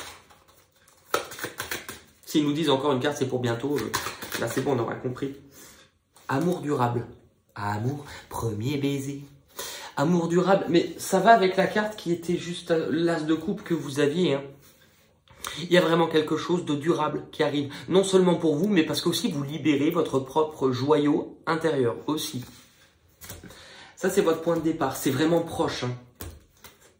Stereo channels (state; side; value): identical; both; correlation 1.00